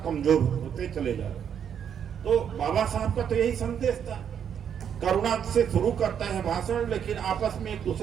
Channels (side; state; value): left; quieter; 8.3 dB